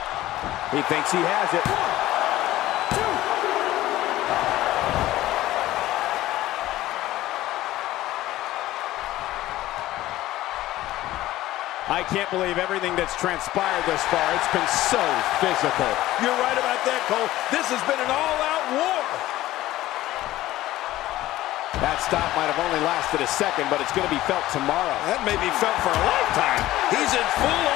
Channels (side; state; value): right; quieter; 15.7 dB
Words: He thinks he has it. I can't believe everything that's transpired thus far. It's been so physical. You're right about that, Cole. This has been an all-out war. That stop might have only lasted a second, but it's going to be felt tomorrow. That may be felt for a lifetime. He's in